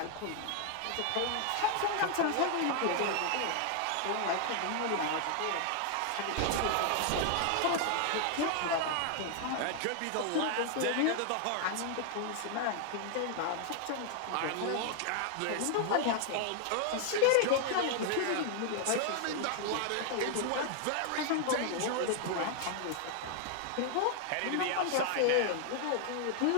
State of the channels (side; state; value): both; different; correlation 0.00